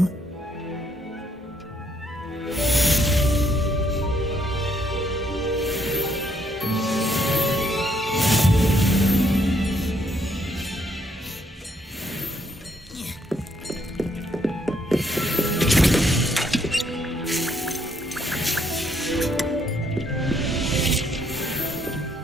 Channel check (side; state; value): both; normal; correlation 0.71